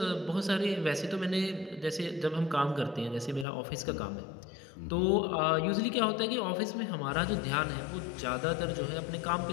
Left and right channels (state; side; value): drops out; right; at 3.5 s